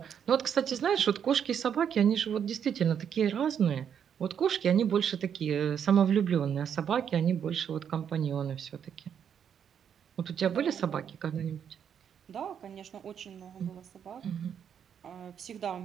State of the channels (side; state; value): left; quieter; 8.2 dB